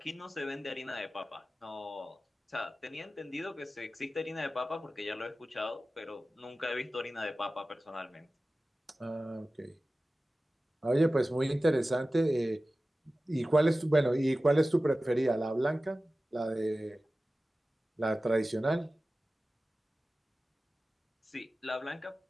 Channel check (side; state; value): both; normal; correlation 0.95